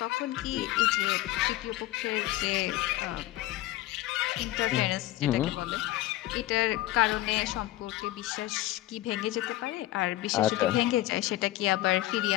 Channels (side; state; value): right; quieter; 16.1 dB